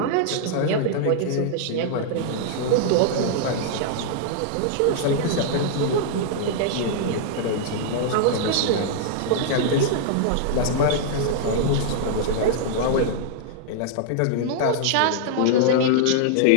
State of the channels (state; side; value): different; both; correlation -0.01